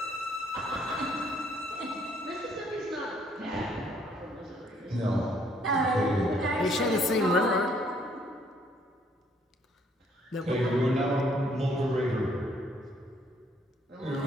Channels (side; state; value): both; normal; correlation 0.65